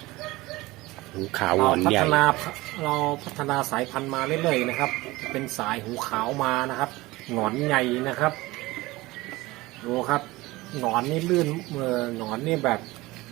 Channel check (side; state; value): left; quieter; 20.2 dB